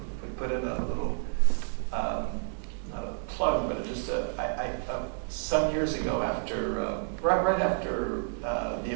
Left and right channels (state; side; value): silent; left; 58 dB below the other